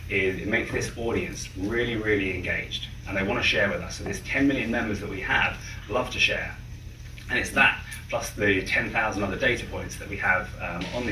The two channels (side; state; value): both; identical; correlation 1.00